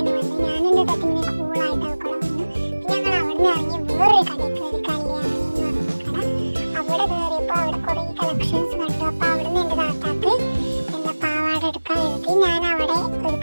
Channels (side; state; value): both; inverted; correlation -1.00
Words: വന്നു. ഞാനും എൻ്റെ തട്ടിങ്ങനെ കൂളായിട്ട് അവിടെ വന്നു. പിന്നെ ഞങ്ങൾ അവിടെ നിന്ന് ഇറങ്ങി വേറൊരു കടയിൽ കയറി, കല്യാണി എന്ന് പറഞ്ഞ കട. അവിടെ കയറിയപ്പോൾ അവിടെ കുറേ കളക്ഷൻസ് കണ്ടു. അപ്പോൾ അവിടെ നിന്ന് എൻ്റെ താത്താക്ക് പാവാട എടുക്കാൻ എഴുതി. ഞാൻ അവിടെ ഒരു